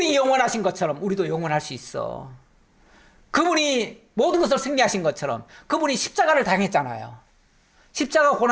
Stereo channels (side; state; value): both; identical; correlation 1.00